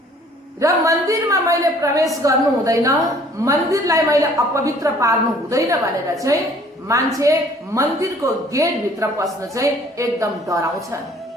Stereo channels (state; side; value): normal; both; correlation 0.56